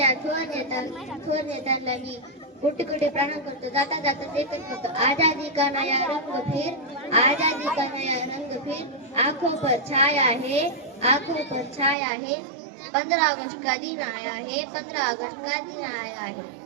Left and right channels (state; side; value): drops out; left; at 12.0 s